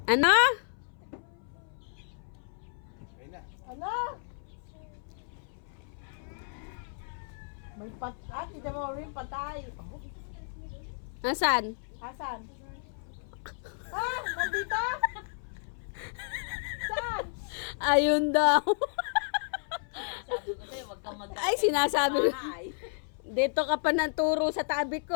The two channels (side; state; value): right; silent; 56 dB below the other